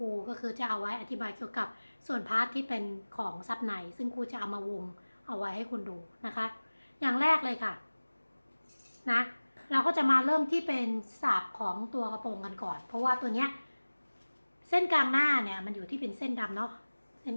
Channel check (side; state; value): both; inverted; correlation -1.00